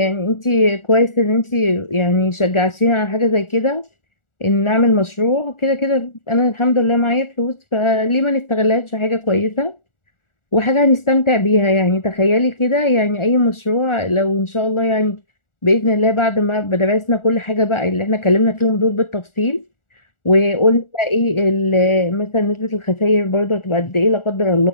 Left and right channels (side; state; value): right; late; 1.4 ms